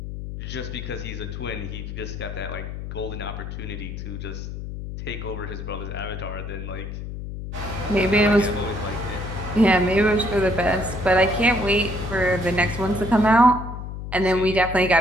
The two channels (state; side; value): noise; left; hum, 8 dB below the sound